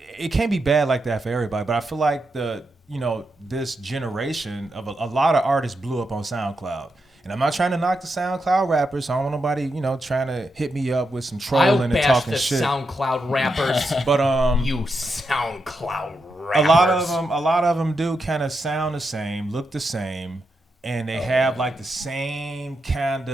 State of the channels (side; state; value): both; normal; correlation 0.85